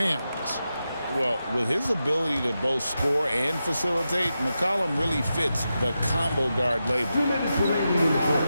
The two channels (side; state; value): both; inverted; correlation -0.89